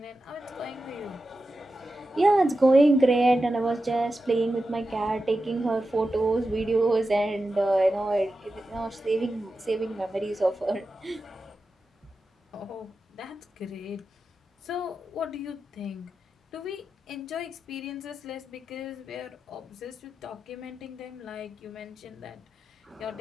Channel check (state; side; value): normal; both; correlation 0.91